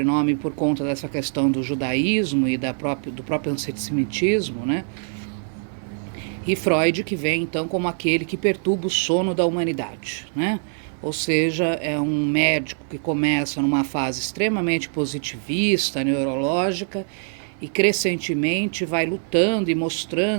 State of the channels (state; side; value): silent; left; 62 dB below the other